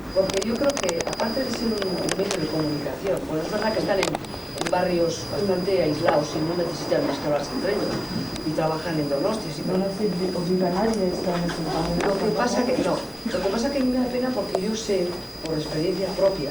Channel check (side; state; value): both; identical; correlation 1.00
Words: Porque yo creo que, aparte de ser un medio de comunicación, bueno, es verdad que están en barrios bastante aislados y no necesitan más que hablarse entre ellos y trabajan en Donostia. No nos obliga a nadie a estar en ese barrio. Lo que pasa que a mí me da pena porque yo sé, por experiencia